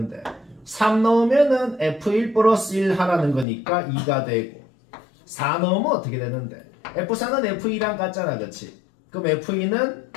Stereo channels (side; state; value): right; drops out; at 3.5 s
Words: 3 넣으면은 f1 플러스 1 하라는 거니까 2가 되고 4 넣으면 어떻게 되는데? f4는 f2랑 같잖아, 그치? 그럼 f2는